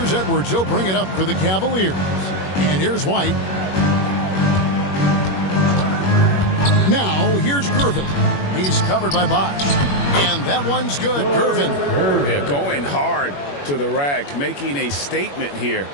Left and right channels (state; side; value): late; right; 21 ms